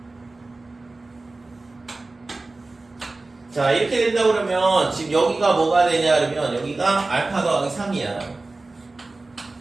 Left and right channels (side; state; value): left; quieter; 3.3 dB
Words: 자, 이렇게 된다 그러면 지금 여기가 뭐가 되냐 그러면 여기가 알파 더하기 3이야.